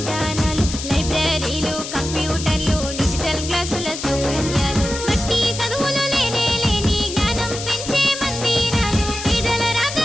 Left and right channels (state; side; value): noise; left; hiss, 7 dB below the sound